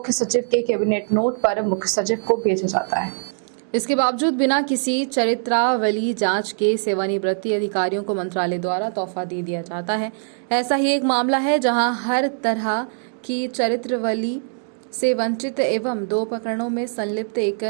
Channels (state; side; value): silent; left; digital silence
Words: सचिव के कैबिनेट नोट पर मुख्य सचिव को भेजा जाता है। इसके बावजूद बिना किसी चरित्रावली जांच के सेवानिवृत्ति अधिकारियों को मंत्रालय द्वारा तोहफा दे दिया जाता है। ऐसा ही एक मामला है जहां हर तरह की चरित्रावली से वंचित एवं 2 प्रकरणों में संलिप्त